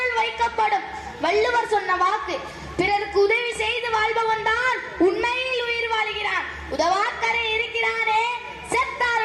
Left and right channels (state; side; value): identical; both; correlation 1.00